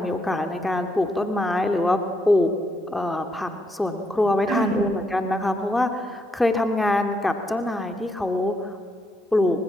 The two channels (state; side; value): normal; both; correlation 0.77